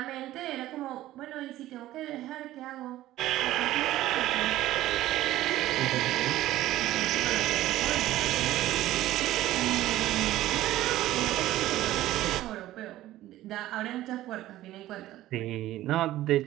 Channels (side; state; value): left; quieter; 15.0 dB